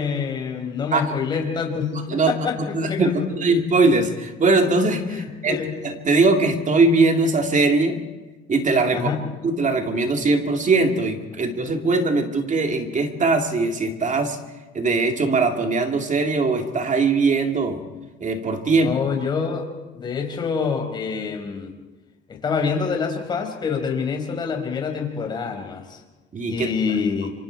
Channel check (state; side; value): normal; both; correlation 0.48